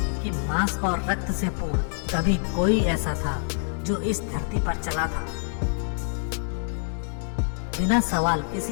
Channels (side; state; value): right; silent; digital silence